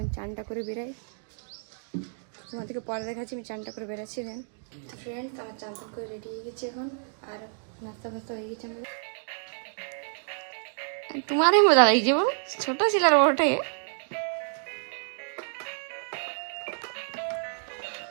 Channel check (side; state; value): left; silent; digital silence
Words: চানটা করে বেরাই, তোমাদেরকে পরে দেখাচ্ছি আমি চানটা করে বেরাচ্ছি। দেন ফ্রেন্ডস, আমার চান টান করে রেডি হয়ে গেছে এখন, আর নাস্তা ফাস্তা হয়ে গেছে আমাদের। তোমারই মজা লাগছে বল, ছোট ছিল আর ওঠে।